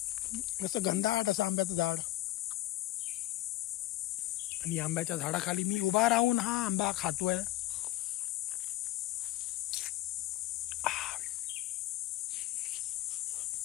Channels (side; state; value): right; quieter; 15.6 dB